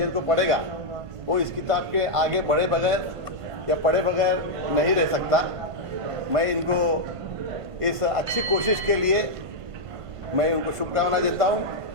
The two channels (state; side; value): late; left; 1.5 ms